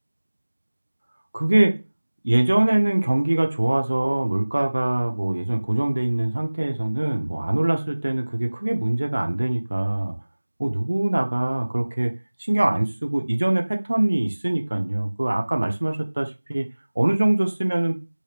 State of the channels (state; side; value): inverted; both; correlation -1.00